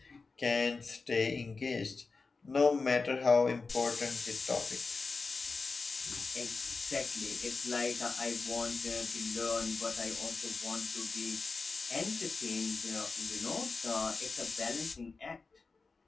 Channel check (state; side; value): quieter; right; 4.2 dB